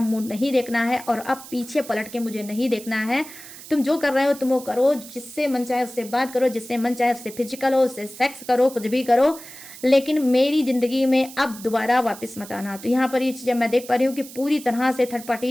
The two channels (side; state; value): right; noise; hiss, 16 dB below the sound